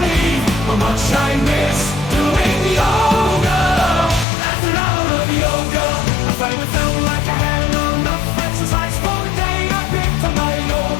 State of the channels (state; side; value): drops out; right; at 4.2 s